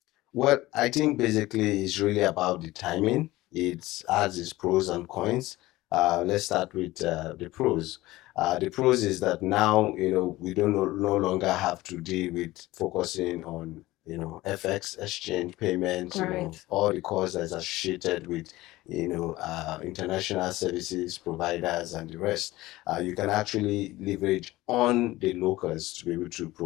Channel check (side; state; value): right; quieter; 18.1 dB